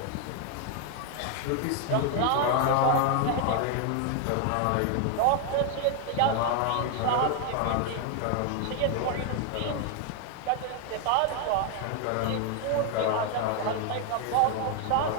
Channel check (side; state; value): both; different; correlation 0.00